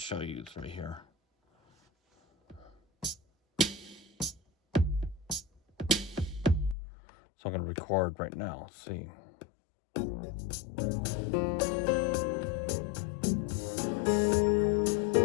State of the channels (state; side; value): drops out; right; at 6.8 s